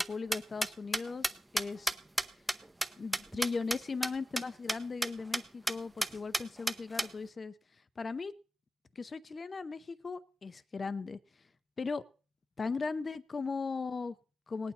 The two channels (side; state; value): both; normal; correlation 0.94